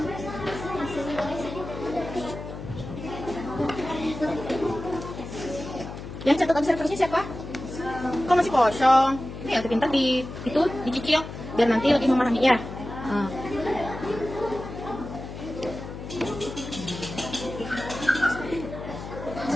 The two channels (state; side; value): noise; left; hum, 10 dB below the sound